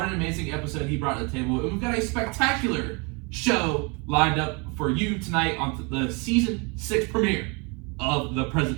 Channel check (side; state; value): left; quieter; 31.0 dB